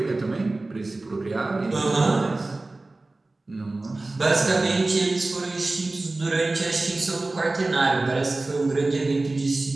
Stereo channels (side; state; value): left; quieter; 3.1 dB